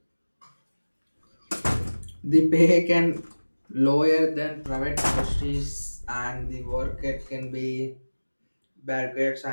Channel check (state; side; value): inverted; both; correlation -1.00